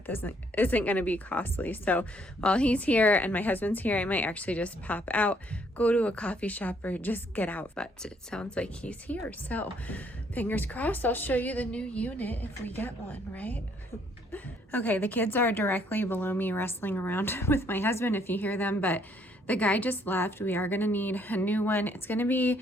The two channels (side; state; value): both; normal; correlation 0.67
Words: this isn't going to be costly. So while he's here and my husband's here, I might actually just pop out, go to a coffee shop, or just get out. But it sounds like he's here. So fingers crossed, I'll show you the new unit if we get one, right? Okay, the kids are directly below me wrestling around with my husband if you hear them, but the guy just left. We are gonna need a new one. It's gonna be